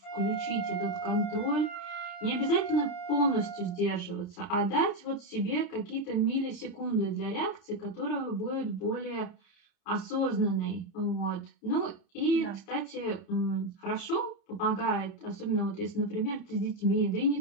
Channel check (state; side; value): late; right; 30 ms